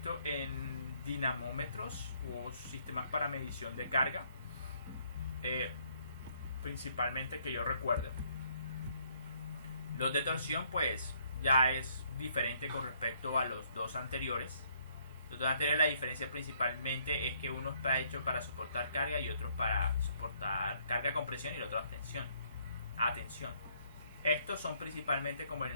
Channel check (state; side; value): inverted; both; correlation -0.68